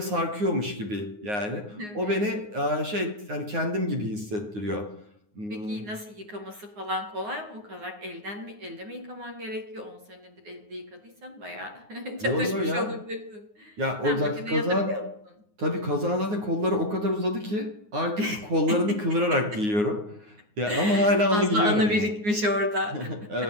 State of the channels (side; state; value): left; late; 9.6 ms